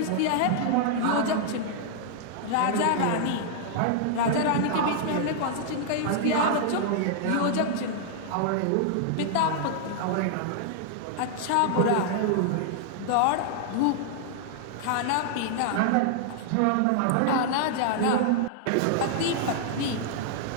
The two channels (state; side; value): different; both; correlation -0.01